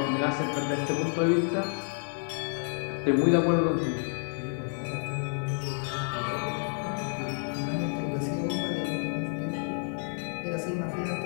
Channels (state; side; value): silent; right; 58 dB below the other